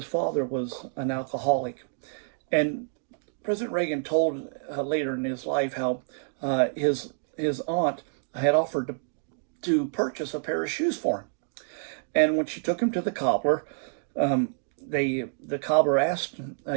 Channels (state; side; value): silent; left; digital silence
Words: father was an alcoholic. And President Reagan told later in his life how his aunt had offered to purchase a pair of shoes for him. And when she took him to the cobbler, the cobbler asked